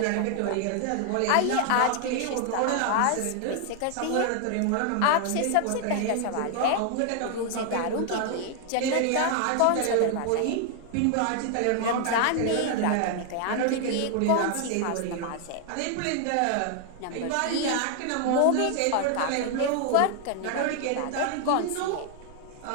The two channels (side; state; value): both; different; correlation 0.00